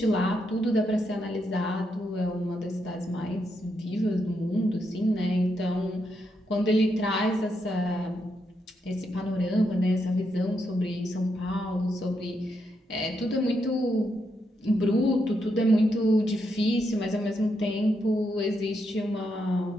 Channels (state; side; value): normal; both; correlation 0.81